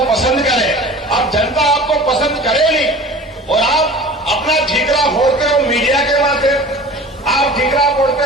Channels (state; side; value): normal; both; correlation 0.41